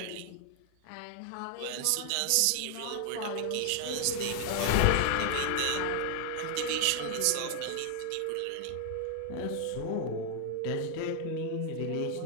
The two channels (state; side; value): different; both; correlation 0.00